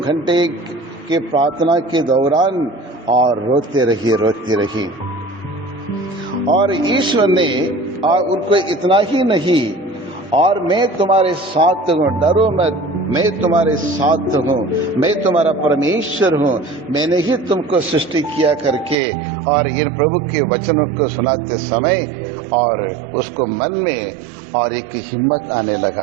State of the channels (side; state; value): left; drops out; at 18.9 s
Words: के प्रार्थना के दौरान और रोते रही। और ईश्वर ने उनको इतना ही नहीं, और मैं तुम्हारे साथ हूँ, डरो मत, मैं तुम्हारे साथ हूँ, मैं तुम्हारा परमेश्वर हूँ, मैंने ही तुमको सृष्टि किया करके। और इन प्रभु के वचनों को सुनाते समय और उसको मन में और एक हिम्मत आने